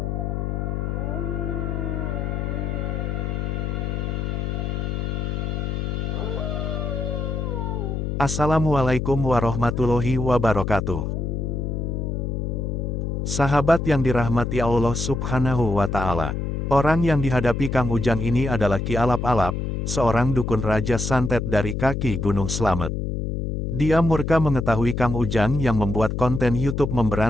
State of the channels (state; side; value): noise; left; hum, 2 dB below the sound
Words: Assalamualaikum warahmatullahi wabarakatuh. Sahabat yang dirahmati Allah Subhanahu wa Ta'ala. Orang yang dihadapi Kang Ujang ini adalah Ki Alap-Alap, seorang dukun Raja Santet dari kaki Gunung Slamet. Dia murka mengetahui Kang Ujang yang membuat konten YouTube